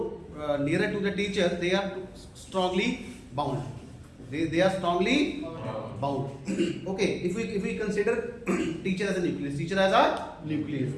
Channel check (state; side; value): identical; both; correlation 1.00